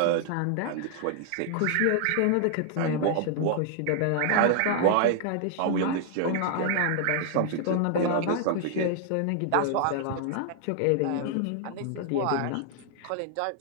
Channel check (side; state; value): both; different; correlation 0.00